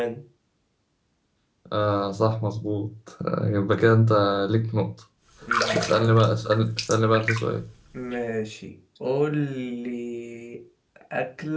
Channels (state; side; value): identical; both; correlation 1.00